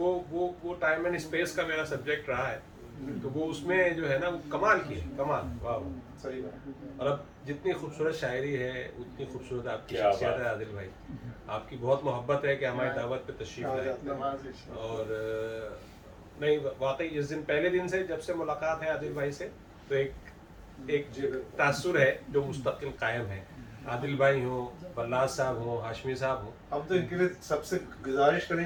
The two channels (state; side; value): identical; both; correlation 1.00